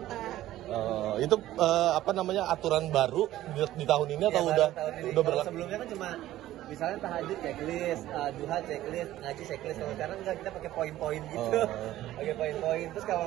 Itu apa namanya aturan baru di tahun ini atau Ya, udah tahun ini. udah Kalau berlaku? sebelumnya kan cuma misalnya tahajud checklist, duha checklist, ngaji checklist. Kalau sekarang enggak, kita pakai poin-poin gitu. Pakai poin-poin. Terus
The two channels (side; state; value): left; quieter; 14.4 dB